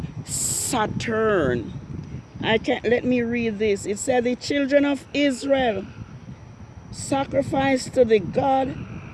Saturn. Let me read this. It said the children of Israel sacrificed to the god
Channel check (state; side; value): identical; both; correlation 1.00